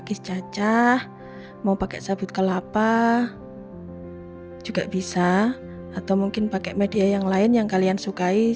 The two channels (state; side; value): identical; both; correlation 1.00